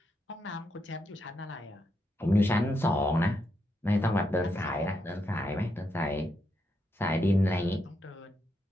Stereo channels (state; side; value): normal; both; correlation 0.81